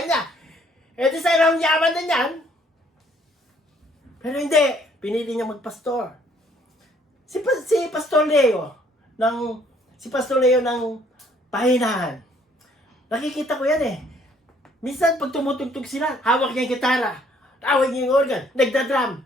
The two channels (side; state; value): both; normal; correlation 0.63